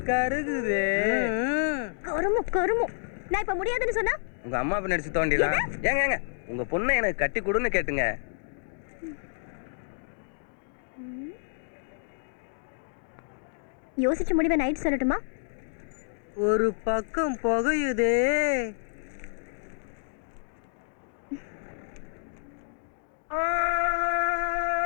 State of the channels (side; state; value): right; silent; digital silence